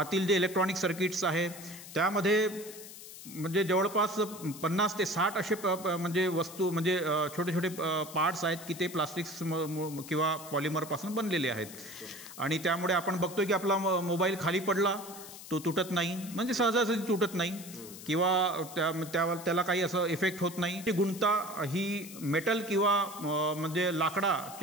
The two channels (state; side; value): noise; left; hiss, 14 dB below the sound